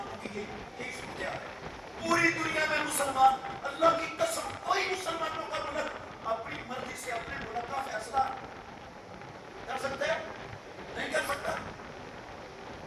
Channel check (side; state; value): both; identical; correlation 1.00